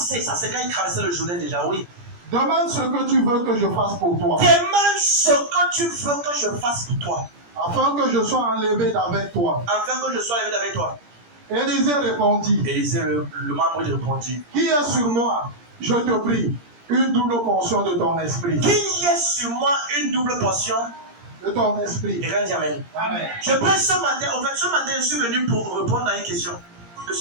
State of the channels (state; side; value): late; left; 17 ms